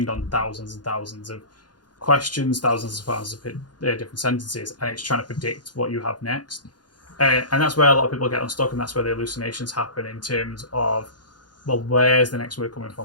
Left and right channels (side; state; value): right; late; 0.70 ms